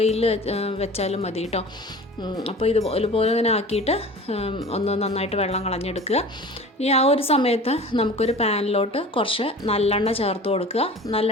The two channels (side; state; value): both; normal; correlation 0.40